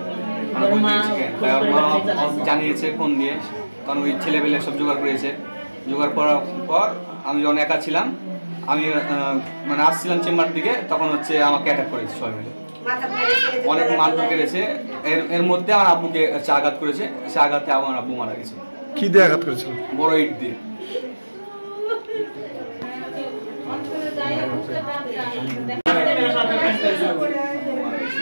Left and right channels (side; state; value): both; inverted; correlation -1.00